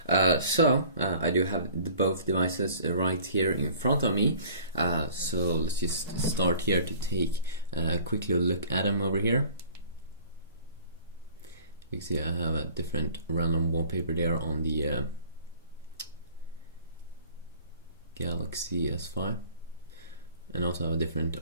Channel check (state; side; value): inverted; both; correlation -0.49